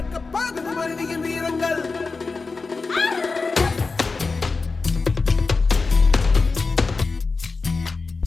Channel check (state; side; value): quieter; right; 4.1 dB